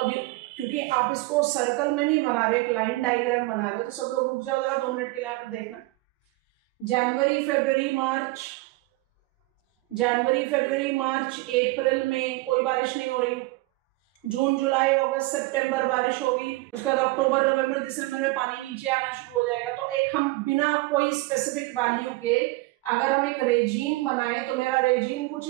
क्योंकि आप इसको सर्कल में नहीं बना रहे, एक लाइन डायग्राम बना रहे हो, तो सब लोग रुक जाओ जरा 2 मिनट के लिए यहाँ पर देखना। जनवरी फरवरी मार्च, जनवरी फरवरी मार्च अप्रैल में कोई बारिश नहीं हो रही। जून जुलाई अगस्त सितंबर बारिश होगी। उसके बाद अक्टूबर नवंबर दिसंबर में पानी नीचे आना शुरू हो जाएगा। तो एक हम बिना कोई स्पेसिफिक वैल्यू के अगर हम एक रेजीम बनाए तो मेरा रेजीम कुछ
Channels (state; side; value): quieter; left; 22.0 dB